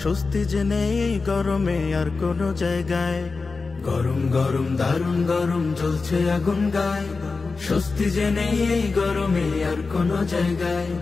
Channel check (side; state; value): right; quieter; 4.2 dB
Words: স্বস্তি যে নেই এই গরমে আর কোনো জায়গায়। গরম গরম দারুণ গরম জ্বলছে আগুন গায়, স্বস্তি যে নেই এই গরমে আর কোনো জায়গায়।